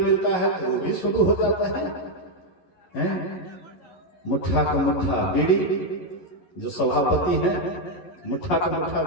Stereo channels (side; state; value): right; late; 11 ms